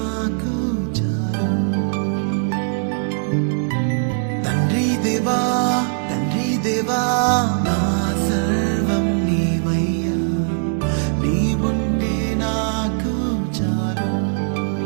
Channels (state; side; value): silent; left; digital silence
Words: చాలు. తండ్రి దేవా నా సర్వం నీవయ్యా, నీవుంటే నాకు చాలు.